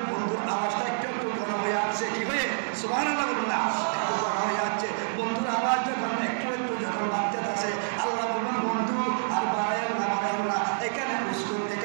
বন্ধুর আওয়াজটা একটু একটু ঘন হয়ে আসছে, কি হয়ে সুবহানাল্লাহ বলুন না, একটু ঘন হয়ে যাচ্ছে। বন্ধুর আওয়াজ যখন একটু একটু যখন বাড়তে আসে, আল্লাহ বলবেন বন্ধু আর বাড়াইও না, এখানে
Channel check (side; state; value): left; silent; digital silence